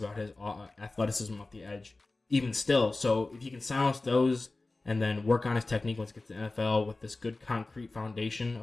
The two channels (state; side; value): quieter; right; 3.2 dB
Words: his athleticism off the edge, even still. So if he can silence those and then work on his technique once he gets to the NFL with this good concrete foundation